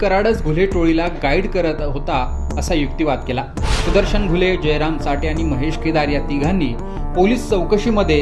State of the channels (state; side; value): identical; both; correlation 1.00